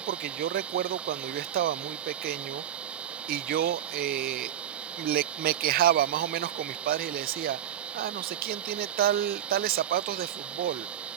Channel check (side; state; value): left; quieter; 10.6 dB